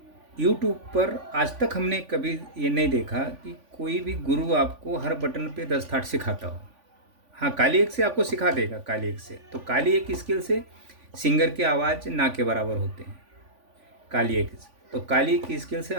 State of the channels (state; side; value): late; left; 3.5 ms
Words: YouTube पर आज तक हमने कभी ये नहीं देखा कि कोई भी गुरु आपको हर बटन पे 10 थाट सिखाता हो। हाँ, काली एक से आपको सिखा देगा, काली एक से। तो काली एक स्किल से सिंगर की आवाज़ ना के बराबर होते हैं, काली एक से। तो काली एक स्किल से